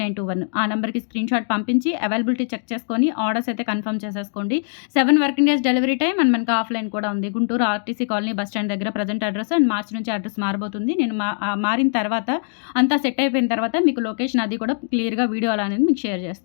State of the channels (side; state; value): right; silent; digital silence